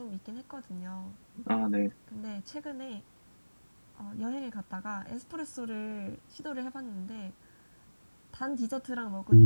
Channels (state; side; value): inverted; both; correlation -1.00